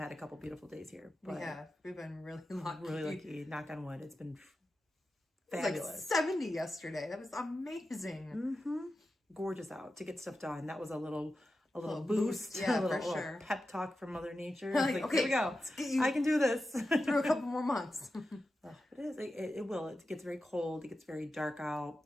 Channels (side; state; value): both; normal; correlation 0.91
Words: a couple beautiful days here. But yeah, we've been really lucky. Really lucky. Knock on wood. It's been fabulous. It was like 70 yesterday. That was amazing. Mm-hmm. Gorgeous out to get stuff done. That was a little boost. Yeah, a little, for sure. Pep talk from Mother Nature. Like, okay, here we go. I can do this. Through a couple more months. It is. It will. It gets very cold. It gets very dark out.